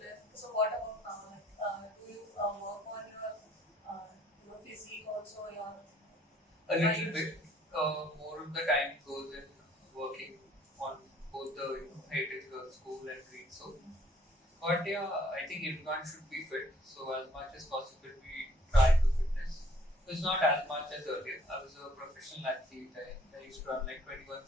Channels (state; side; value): normal; both; correlation 0.61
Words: So what about now? Like, do you work on your physique also? A little bit. More of the time goes in working on both the Heritage Girls School and Greensole. But yeah, I think everyone should be fit. So as much as possible, we try to fitness. It's not as much as earlier. I was a professional athlete. I used to run like 21